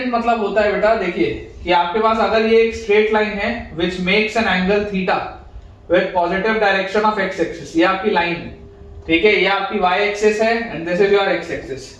मतलब होता है बेटा, देखिए कि आपके पास अगर ये एक स्ट्रेट लाइन है which makes an angle theta with positive direction of x axis, ये आपकी लाइन है, ठीक है। ये आपकी y एक्सिस है and this is your x axis.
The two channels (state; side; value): identical; both; correlation 1.00